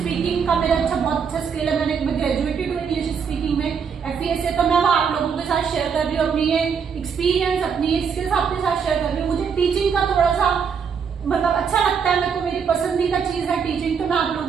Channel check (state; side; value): quieter; left; 6.6 dB